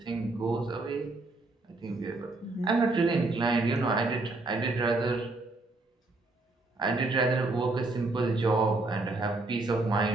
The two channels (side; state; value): left; quieter; 3.2 dB